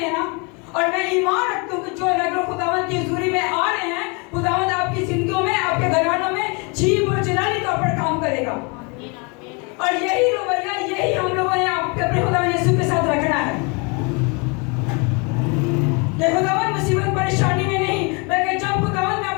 ना, और मैं ईमान रखता हूँ कि जो रेगुलर खुदावंद की हजूरी में आ रहे हैं, खुदावंद आपकी जिंदगियों में, आपके घरानों में जीव और जलाली तौर पर काम करेगा। और यही रवैया, यही हम लोगों ने अपने खुदा यीशु के साथ रखना है। कि खुदावन मुसीबत परेशानी में नहीं, बल्कि जब खुदावन मैं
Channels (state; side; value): quieter; right; 31.5 dB